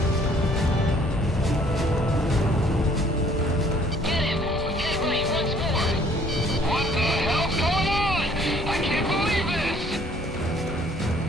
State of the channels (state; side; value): normal; both; correlation 0.60